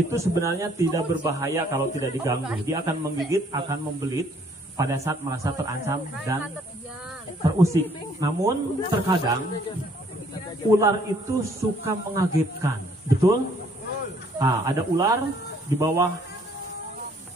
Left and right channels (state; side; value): normal; both; correlation 0.63